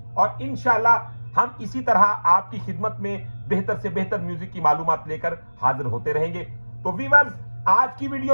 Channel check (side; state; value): both; inverted; correlation -1.00